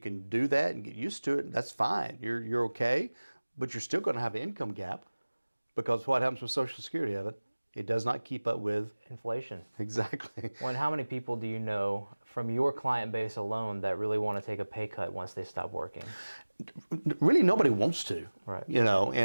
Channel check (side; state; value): both; inverted; correlation -1.00